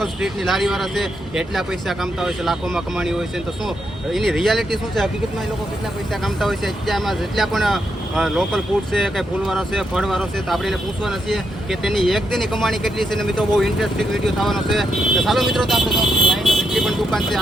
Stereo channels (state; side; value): normal; both; correlation 0.80